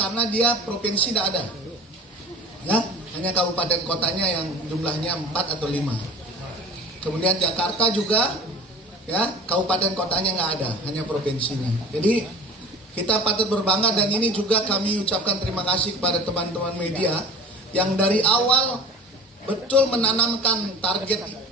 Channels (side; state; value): both; normal; correlation 0.41